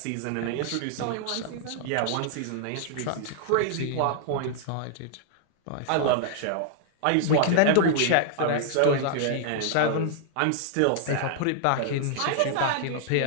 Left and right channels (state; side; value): different; both; correlation 0.00